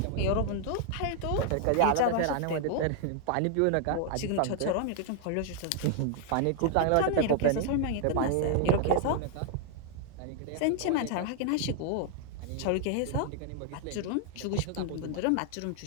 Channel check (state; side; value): different; both; correlation 0.00